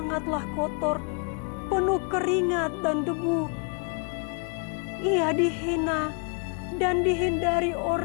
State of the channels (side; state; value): right; quieter; 38.1 dB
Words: kotor, penuh keringat dan debu, ia dihina dan dihindari